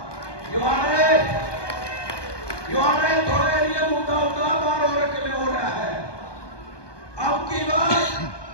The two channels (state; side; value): late; right; 1.2 ms